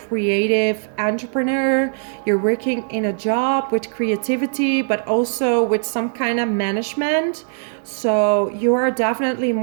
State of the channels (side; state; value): left; silent; digital silence